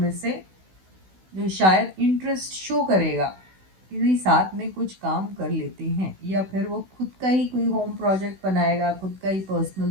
से जो शायद इंटरेस्ट शो करेगा कि साथ में कुछ काम कर लेते हैं, या फिर वो खुद का ही कोई होम प्रोजेक्ट बनाएगा, खुद का ही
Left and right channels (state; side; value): late; left; 16 ms